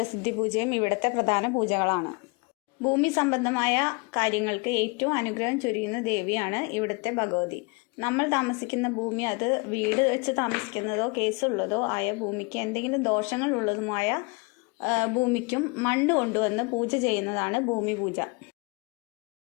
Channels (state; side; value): quieter; right; 29.7 dB